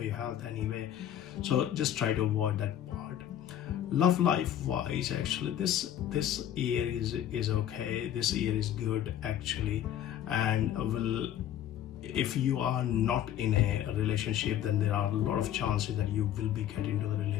your health anyway. So just try to avoid that part. Love life wise, actually this year is okay. This year is good actually, and if you are not in a relationship, then there are a lot of chances that you will be getting into the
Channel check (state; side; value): quieter; right; 11.0 dB